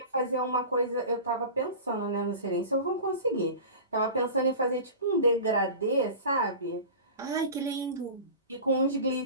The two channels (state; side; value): inverted; both; correlation -0.34